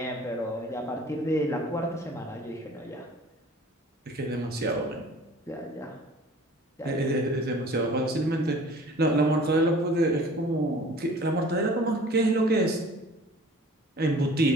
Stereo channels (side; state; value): both; normal; correlation 0.48